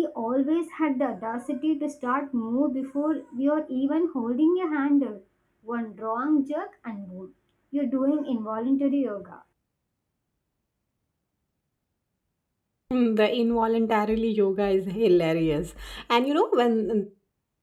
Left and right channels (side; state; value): both; identical; correlation 1.00